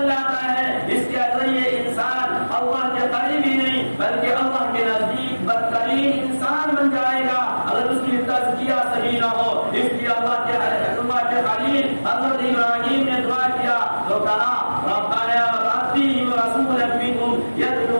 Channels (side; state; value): both; inverted; correlation -1.00